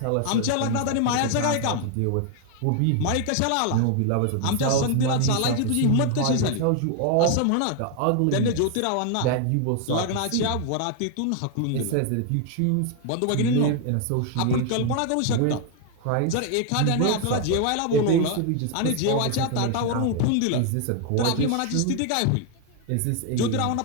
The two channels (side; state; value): both; different; correlation 0.01